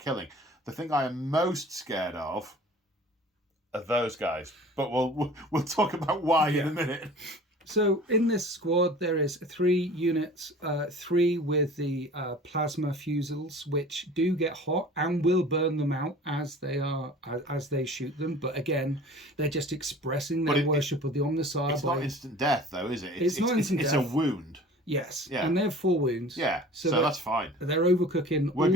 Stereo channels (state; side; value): normal; both; correlation 0.44